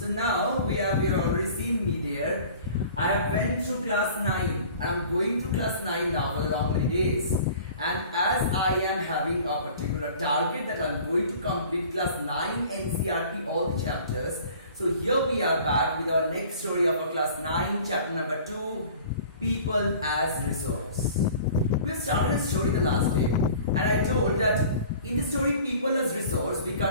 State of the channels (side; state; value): both; inverted; correlation -0.46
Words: now we have already seen me there. I have went through class 9. I am going through class 9 now for the long many days. And as I am having a particular target that I am going to complete class 9 NCERT all the chapters. So here we are back with our next story of our class 9 chapter number 2, People as Resource. We have started a story the last day, and I told that in the story People as Resource, we